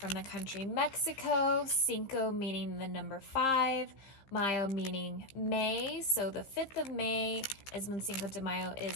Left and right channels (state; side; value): late; right; 15 ms